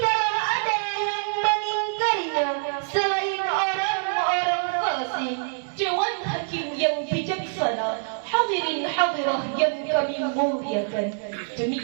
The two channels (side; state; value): left; silent; 62 dB below the other